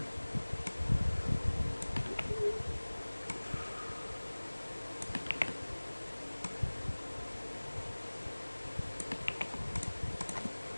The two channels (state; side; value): inverted; both; correlation -1.00